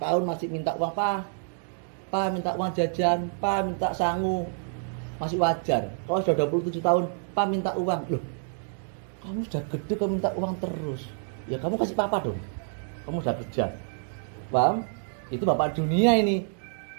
masih minta uang, Pak minta uang jajan, Pak minta sangu, masih wajar. Kalau sudah 27 tahun, Pak minta uang. Loh, kamu sudah gede kamu minta uang terus. Ya kamu kasih papa dong. Kamu sudah kerja. Paham? Itu bapak dunia ini.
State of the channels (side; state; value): left; silent; digital silence